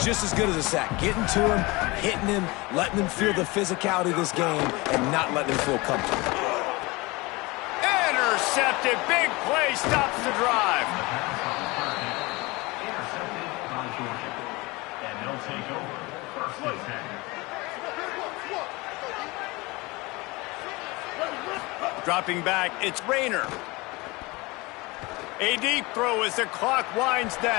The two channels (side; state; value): right; quieter; 23.7 dB